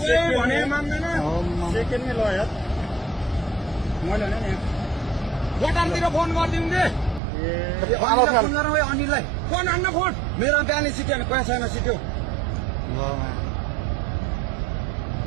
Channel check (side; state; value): left; drops out; at 7.2 s